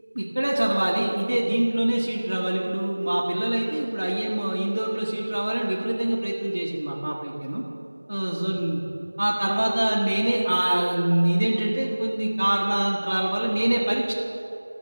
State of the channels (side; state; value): both; inverted; correlation -1.00